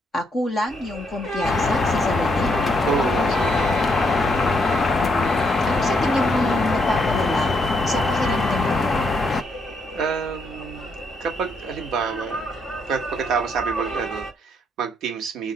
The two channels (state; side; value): normal; both; correlation 0.75